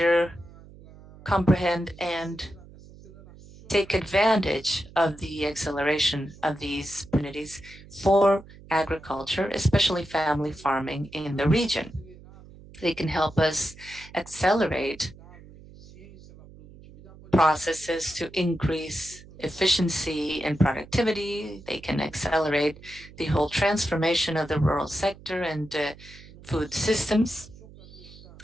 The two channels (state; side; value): noise; right; hum, 20 dB below the sound